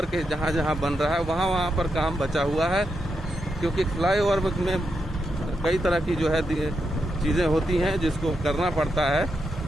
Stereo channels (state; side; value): normal; both; correlation 0.84